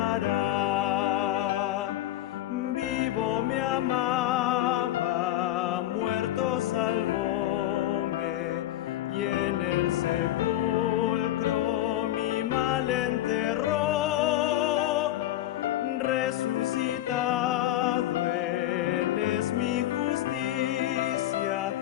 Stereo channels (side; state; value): right; quieter; 13.9 dB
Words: Vivo me amaba, muerto salvóme, y en el sepulcro mi mal enterró. Resucitado Él es mi justicia,